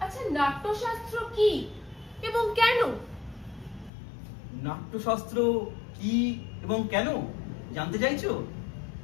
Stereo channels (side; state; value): right; drops out; at 3.9 s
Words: আচ্ছা নাট্যশাস্ত্র কি এবং কেন? নাট্যশাস্ত্র কি এবং কেন জানতে চাইছো?